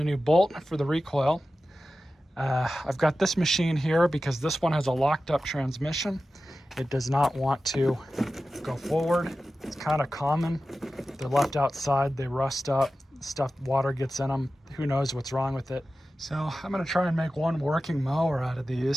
a new bolt for the recoil. I've got this machine here because this one has a locked up transmission. It does not want to go forward. It's kind of common. They're left outside, they rust up, water gets in them. Who knows what's wrong with it. So I'm gonna try and make one working mower out of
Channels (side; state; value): both; normal; correlation 0.94